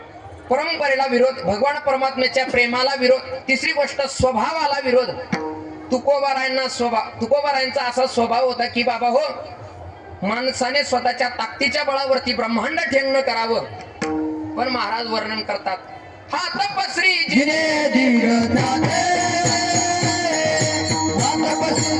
परंपरेला विरोध, भगवान परमात्म्याच्या प्रेमाला विरोध. तिसरी गोष्ट स्वभावाला विरोध. तुकोबारायांचा असा स्वभाव होता की बाबा हो, माणसाने स्वतःच्या ताकदीच्या बळावरती ब्रह्मांड ठेंगण करावं. पण महाराज वर्णन करतात, हात पसरी जिने धीर दाते, हात पसरी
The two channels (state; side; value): identical; both; correlation 1.00